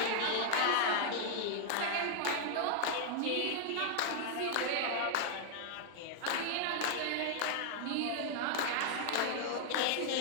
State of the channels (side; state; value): both; different; correlation -0.01